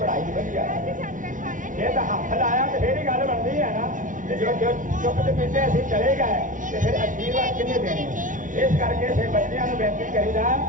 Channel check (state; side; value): late; left; 0.38 ms